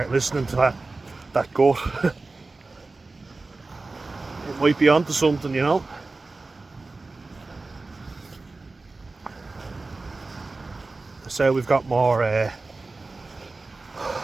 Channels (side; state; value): left; quieter; 3.5 dB